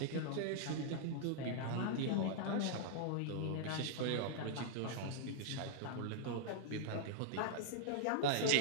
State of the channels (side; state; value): both; different; correlation -0.01